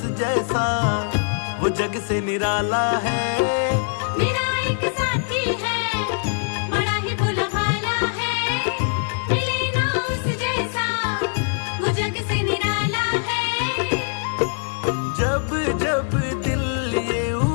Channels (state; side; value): silent; right; digital silence